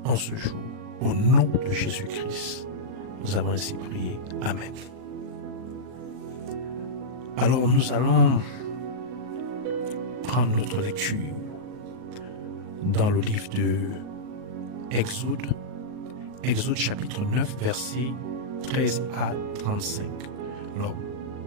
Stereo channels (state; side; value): late; left; 39 ms